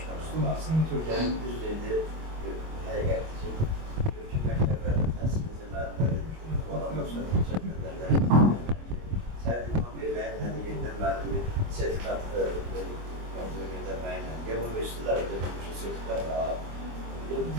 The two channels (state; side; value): late; left; 25 ms